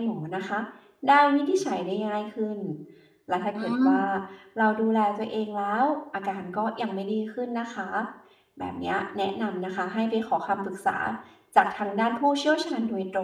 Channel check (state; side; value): identical; both; correlation 1.00